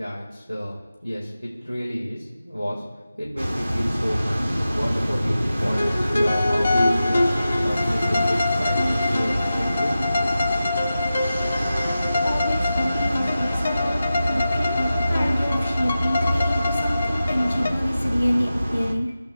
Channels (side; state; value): both; inverted; correlation -0.93